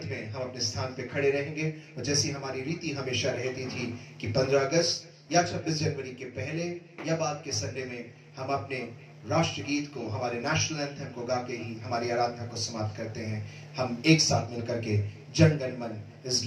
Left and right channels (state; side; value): identical; both; correlation 1.00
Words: में हम अपने स्थान पे खड़े रहेंगे और जैसी हमारी रीति हमेशा रहती थी कि 15 अगस्त या 26 जनवरी के पहले या बाद के संडे में हम अपने राष्ट्रगीत को, हमारे नेशनल एंथम को गा के ही हमारी आराधना को समाप्त करते हैं। हम एक साथ मिलकर के जन गण मन इस